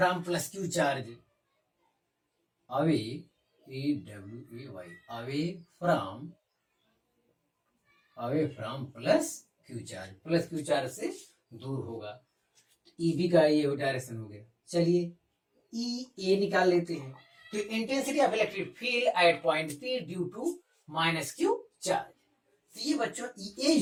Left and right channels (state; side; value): identical; both; correlation 1.00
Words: plus Q charge, away A W A Y, away from plus Q charge से दूर होगा। ई बी का ये डायरेक्शन हो गया। चलिए ई ए निकाल लेते हैं। तो intensity of electric field at point P due to minus Q charge, तो ये बच्चों ई ए